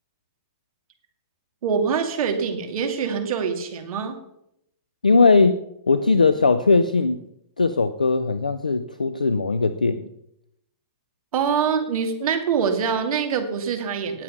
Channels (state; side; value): inverted; both; correlation -0.64